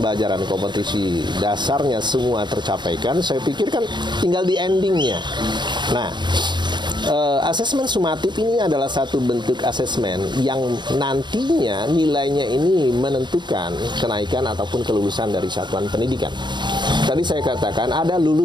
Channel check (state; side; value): late; left; 0.22 ms